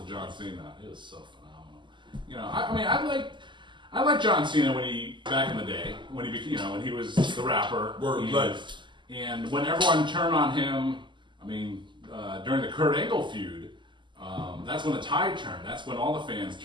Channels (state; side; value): late; left; 0.23 ms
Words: John Cena. It was so phenomenal. You know, I like John Cena when he back in the day when he when he was the rapper. And when everyone turned on him, I mean, during the Kurt Angle feud, that's when the tide turned. That's when all the fans